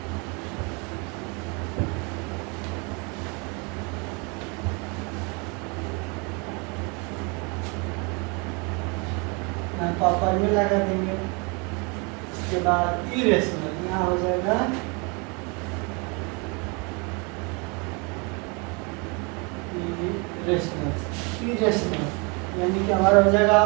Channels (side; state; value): left; quieter; 31.2 dB